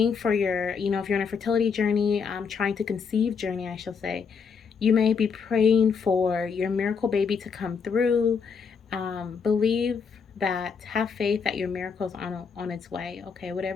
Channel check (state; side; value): quieter; right; 5.9 dB